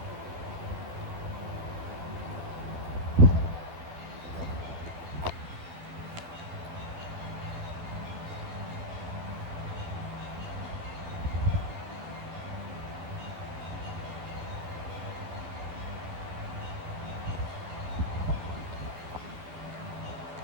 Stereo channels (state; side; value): late; left; 12 ms